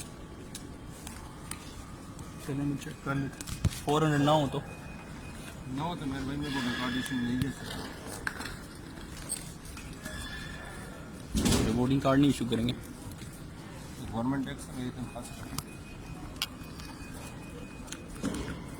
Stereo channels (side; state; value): both; identical; correlation 1.00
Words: चलो मैं चेक कर लेते। 400 ना हो तो ना हो तो मेरे भाई मेरे को रिकॉर्डेशन नहीं दे सकता। वोटिंग कार्ड नहीं इशू करेंगे। गवर्नमेंट टैक्स मेरी तनख्वाह से